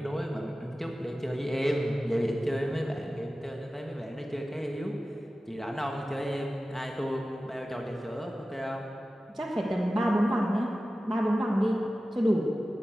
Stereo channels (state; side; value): normal; both; correlation 0.95